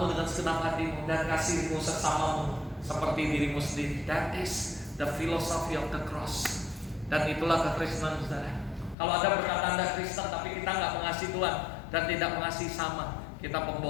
dengan segenap hatimu dan kasihmu sesamamu seperti dirimu sendiri. That is the philosophy of the cross. Dan itulah kekristenan, saudara. Kalau Anda berkata Anda Kristen tapi kita nggak mengasihi Tuhan dan tidak mengasihi sama, kita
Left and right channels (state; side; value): drops out; right; at 9.0 s